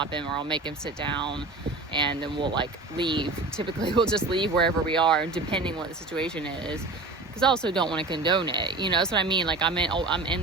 him, or I'll make him sit down, and then we'll like leave. Typically we'll just leave wherever we are, depending what the situation is, because I also don't want to condone it. That's what I mean. Like, I'm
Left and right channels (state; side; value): quieter; left; 3.3 dB